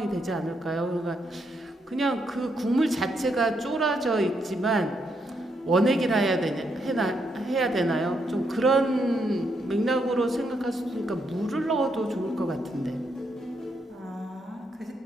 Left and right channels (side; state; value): both; normal; correlation 0.78